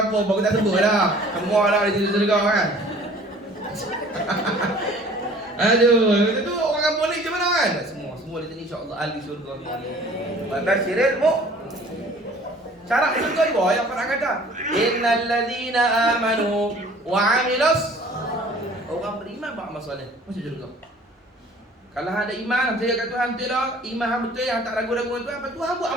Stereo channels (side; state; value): both; normal; correlation 0.50